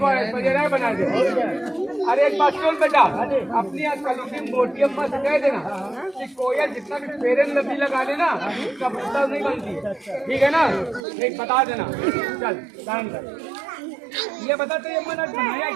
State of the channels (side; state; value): left; drops out; at 11.0 s